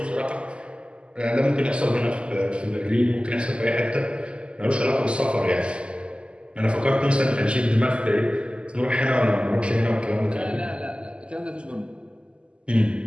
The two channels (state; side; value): late; left; 0.052 ms